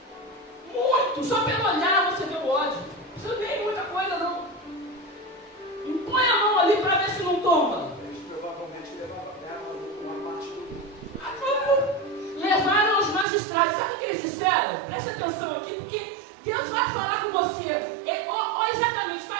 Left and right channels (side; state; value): left; drops out; at 13.2 s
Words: Muitos. Só pelo olhar você vê o ódio. Você não vê muita coisa, não. Põe a mão ali para ver se não toma. Eles provavelmente levavam uma parte do... Levaram aos magistrados. Sabe o que eles disseram? Preste atenção aqui, porque Deus vai falar com você. Exatamente, está